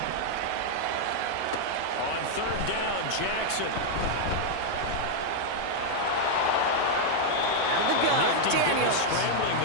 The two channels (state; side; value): different; both; correlation -0.01